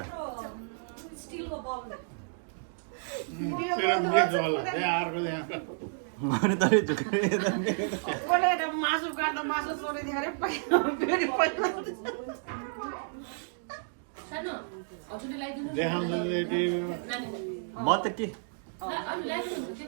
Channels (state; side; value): silent; left; digital silence